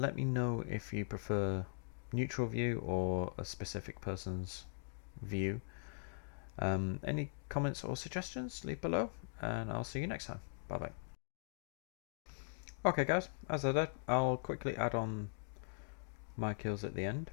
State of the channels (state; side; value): silent; right; digital silence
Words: me know if you prefer neutral view or a specific person's view. Any comments or suggestions, leave below, and I'll see you next time. Bye bye. Okay guys, as I said, I'll quickly add on my kills at the end.